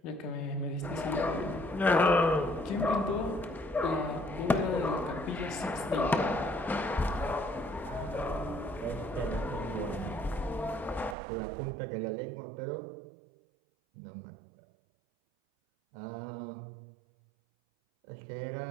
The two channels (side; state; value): left; drops out; at 11.2 s